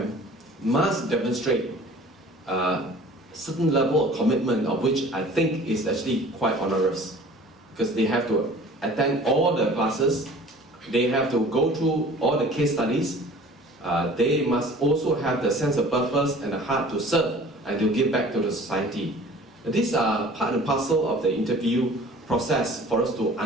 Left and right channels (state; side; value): normal; both; correlation 0.46